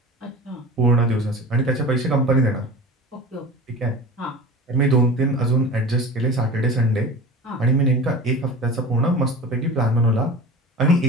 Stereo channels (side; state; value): both; normal; correlation 0.34